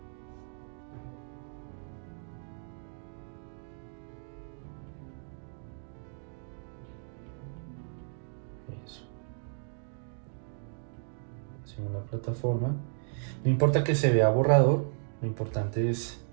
Eso. Según la plataforma. No importa que se vea borrador, lo importante es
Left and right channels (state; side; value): silent; left; digital silence